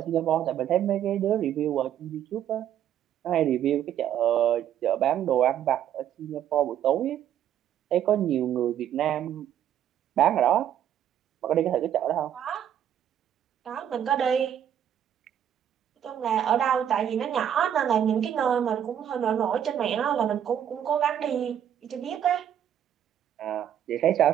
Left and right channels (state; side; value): quieter; left; 10.1 dB